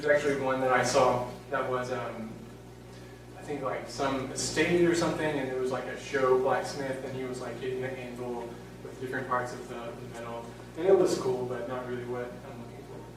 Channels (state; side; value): identical; both; correlation 1.00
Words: actually one that I saw that was, I think like some estate or something, and it was like a show blacksmith, and he was like hitting the anvil with different parts of the metal. And it was cool, but not really what I'm looking for,